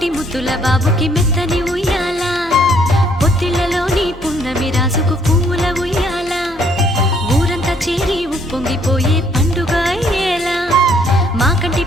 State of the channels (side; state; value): both; normal; correlation 0.66